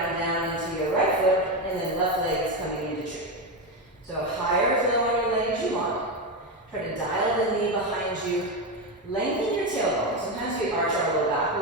down into your right foot, and then left leg is coming into tree. So higher or lower on your leg as you want. Try to dial the knee behind you. Lengthen your tailbone. Sometimes we arch our low back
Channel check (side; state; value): both; normal; correlation 0.12